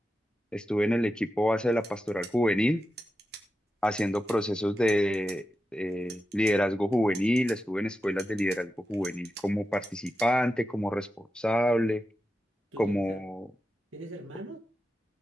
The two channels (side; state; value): both; normal; correlation 0.90